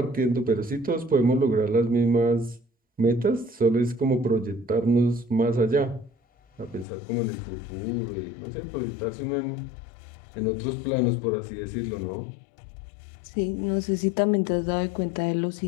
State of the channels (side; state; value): right; drops out; at 6.9 s